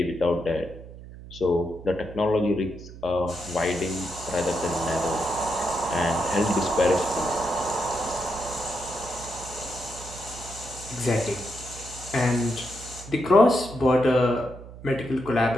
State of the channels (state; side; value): noise; right; hum, 15 dB below the sound